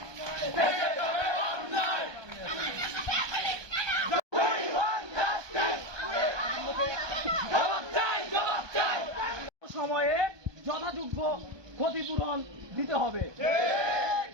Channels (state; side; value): late; left; 1.2 ms